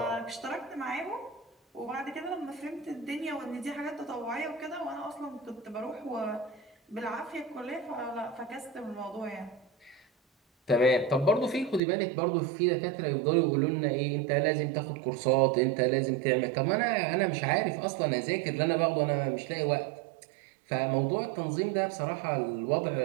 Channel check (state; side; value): drops out; left; at 11.8 s